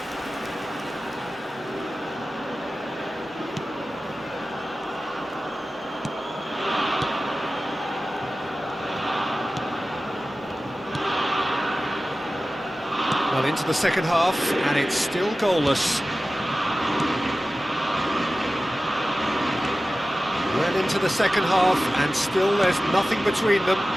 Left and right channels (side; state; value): both; normal; correlation 0.95